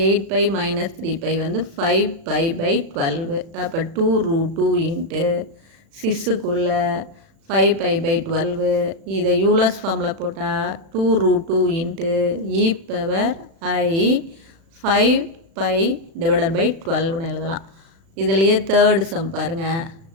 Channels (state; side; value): late; left; 36 ms